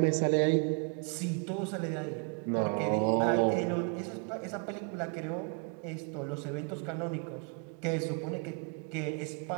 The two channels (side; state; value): left; quieter; 35.4 dB